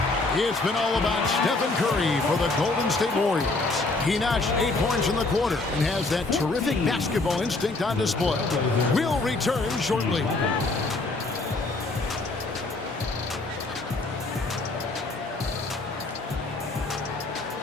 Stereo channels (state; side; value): quieter; right; 3.3 dB